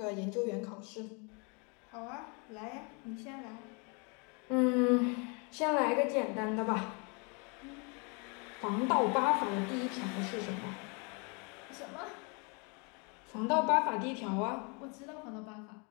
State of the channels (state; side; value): quieter; right; 33.1 dB